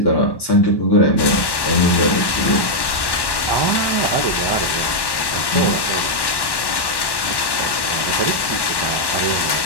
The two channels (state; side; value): late; right; 1.1 ms